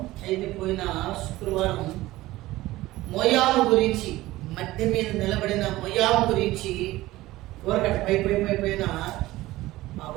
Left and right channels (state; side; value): quieter; left; 17.5 dB